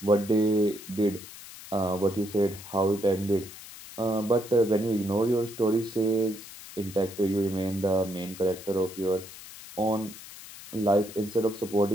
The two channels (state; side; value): noise; left; hiss, 15 dB below the sound